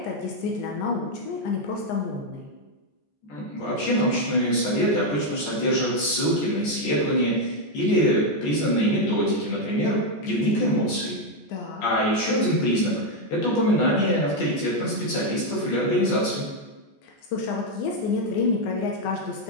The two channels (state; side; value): late; right; 14 ms